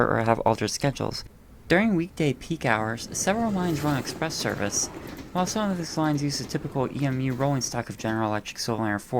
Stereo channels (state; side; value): identical; both; correlation 1.00